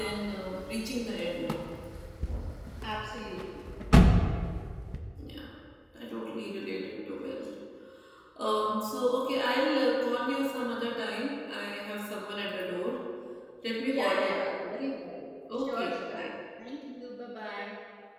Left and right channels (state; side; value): identical; both; correlation 1.00